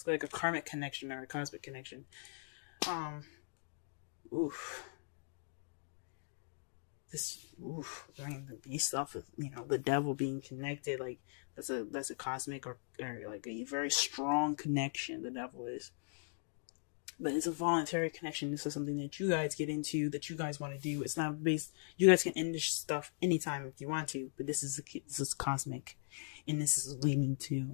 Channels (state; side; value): silent; right; digital silence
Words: like a karmic connection or a cosmic connection. Based off of the Devil being connected, like that's a cosmic or like a very strong connection. The Devil is. But it's a voluntary connection. This is something that you guys get into, that you guys want to do. It's not based. You guys can end this stuff anytime if you want to. But this is cosmic, and this is leading